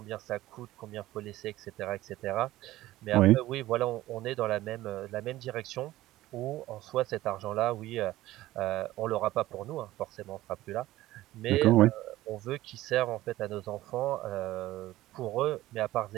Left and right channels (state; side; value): quieter; left; 16.2 dB